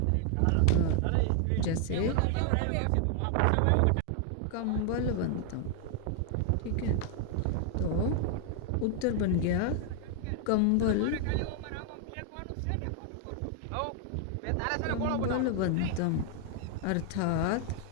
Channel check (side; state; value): both; different; correlation 0.00